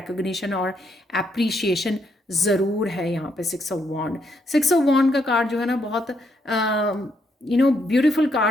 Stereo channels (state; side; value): normal; both; correlation 0.75